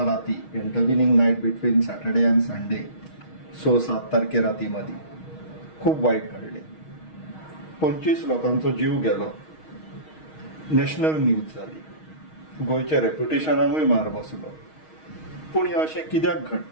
राती intervening night between Saturday and Sunday 6-7 तारखे राती मध्ये खूप वाईट घडले. 25 लोकांचो जीव गेलो. नॅशनल न्यूज जाली. गोयच्या रेप्युटेशनाकूय मार बसलो. पूण हे अशें कित्याक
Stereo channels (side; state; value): right; late; 6.4 ms